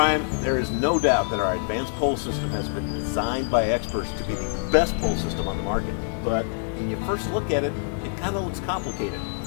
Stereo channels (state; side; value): silent; right; 61 dB below the other